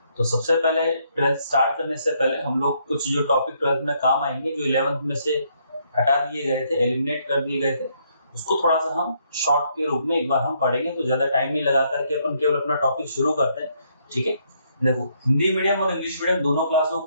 तो सबसे पहले 12th स्टार्ट करने से पहले हम लोग कुछ जो टॉपिक 12th में काम आएंगे, जो 11th में से हटा दिए गए थे, एलिमिनेट कर दिए गए थे, उसको थोड़ा सा हम शॉर्ट के रूप में एक बार हम पढ़ेंगे। तो ज्यादा टाइम नहीं लगा करके अपन केवल अपना टॉपिक शुरू करते हैं। ठीक है, देखो हिंदी मीडियम और इंग्लिश मीडियम दोनों क्लासों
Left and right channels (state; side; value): inverted; both; correlation -0.72